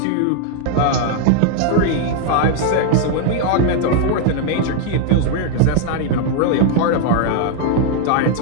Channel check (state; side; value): different; both; correlation 0.00